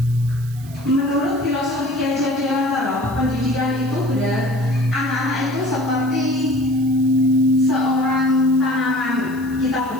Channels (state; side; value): noise; right; hiss, 22 dB below the sound